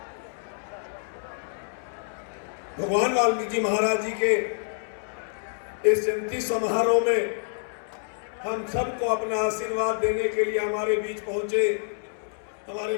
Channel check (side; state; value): right; silent; 60 dB below the other